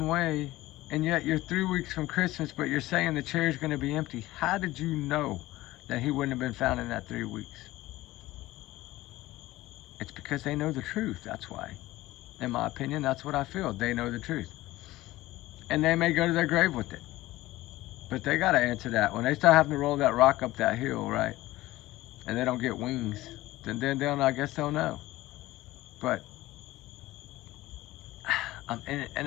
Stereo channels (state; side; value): quieter; right; 17.4 dB